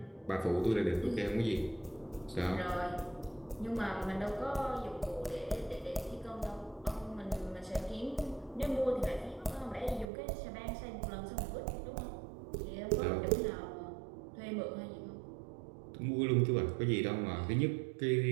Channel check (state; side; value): drops out; left; at 10.1 s